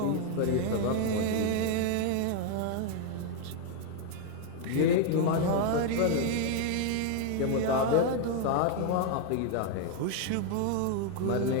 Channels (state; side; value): different; both; correlation 0.00